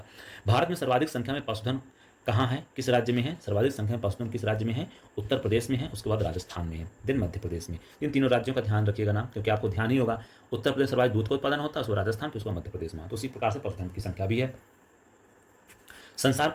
भारत में सर्वाधिक संख्या में पशुधन कहाँ है, किस राज्य में है? सर्वाधिक संख्या में पशुधन किस राज्य में है? उत्तर प्रदेश में है, उसके बाद राजस्थान में है, देन मध्य प्रदेश में। इन तीनों राज्यों का ध्यान रखिएगा नाम, क्योंकि आपको ध्यान ही होगा उत्तर प्रदेश सर्वाधिक दूध का उत्पादन होता है, उसको राजस्थान, फिर उसको मध्य प्रदेश में। तो उसी प्रकार से पशुधन की संख्या भी है। संसार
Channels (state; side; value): identical; both; correlation 1.00